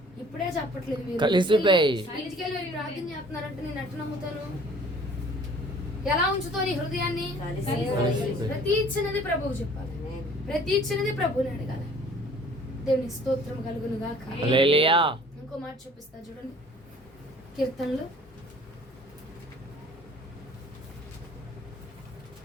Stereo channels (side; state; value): both; normal; correlation 0.52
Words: ఇప్పుడే చెప్పట్లేదు మీరు, ఇంటికి వెళ్ళి మీరు ప్రార్థన చేస్తున్నారంటే నేను ఎట్లా నమ్ముతాను? ఎలా ఉంచుతో నీ హృదయాన్ని? ప్రతి చిన్నది ప్రభువు చెప్పాలి, ప్రతి చిన్నది ప్రభువుని అడగాలి. దేవుని స్తోత్రం కలుగును గాక. ఇంకో మాట చూపిస్తా చూడండి, కీర్తనలు